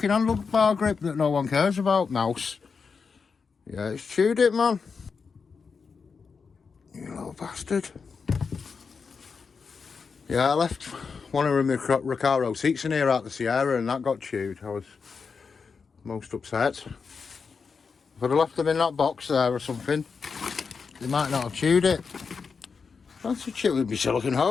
handlebar grip that no one cares about, mouse? Yeah, it's chewed it, man. You little bastard. Yeah, I left one of my Recaro seats in here at the Sierra and that got chewed. I was most upset. If I'd have left them in that box there or something, they might not have chewed it. That's a chew with my silicone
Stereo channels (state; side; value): quieter; right; 5.4 dB